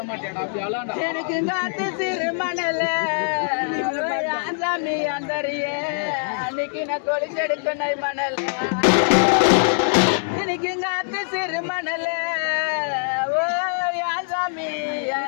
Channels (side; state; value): right; silent; digital silence